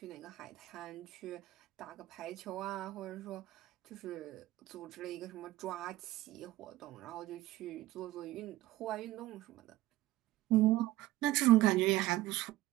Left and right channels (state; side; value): quieter; left; 16.2 dB